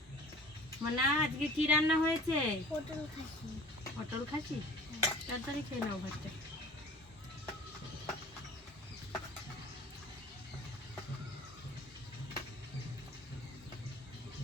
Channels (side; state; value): both; normal; correlation 0.45